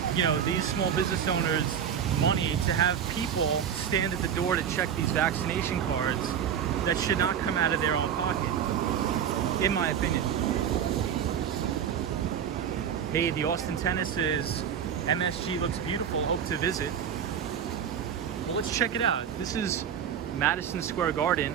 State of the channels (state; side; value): quieter; left; 8.4 dB